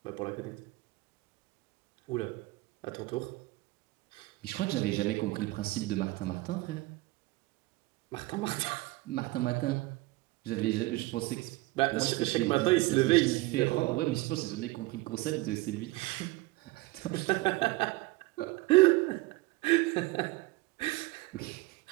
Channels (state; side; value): quieter; left; 21.0 dB